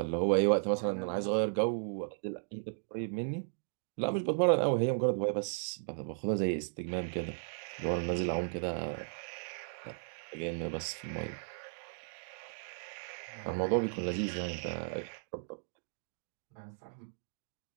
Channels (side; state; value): left; silent; digital silence